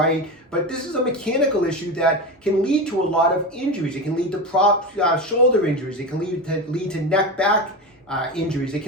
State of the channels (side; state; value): both; normal; correlation 0.21